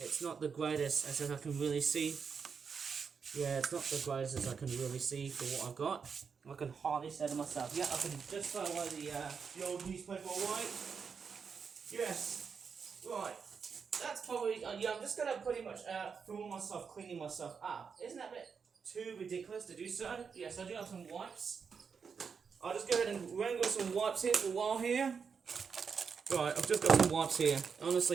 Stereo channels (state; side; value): quieter; left; 6.0 dB